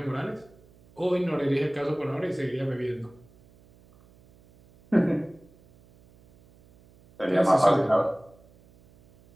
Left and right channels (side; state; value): right; noise; hum, 28 dB below the sound